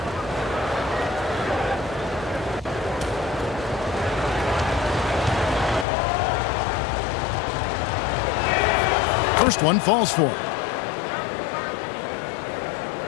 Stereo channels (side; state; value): right; drops out; at 5.9 s